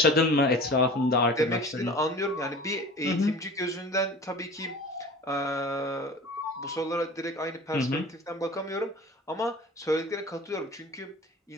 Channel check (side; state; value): both; normal; correlation 0.40